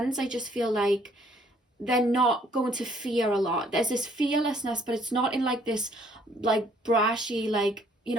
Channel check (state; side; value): normal; both; correlation 0.63